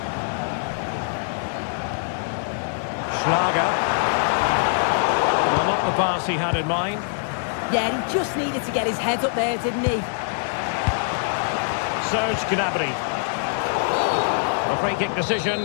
Schlager. Well, not the pass he had in mind. Yeah, he just needed to get his head up there, didn't he? Serge Gnabry. A free kick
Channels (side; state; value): right; silent; digital silence